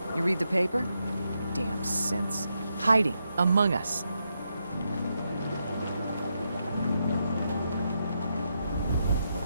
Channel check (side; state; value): both; inverted; correlation -0.83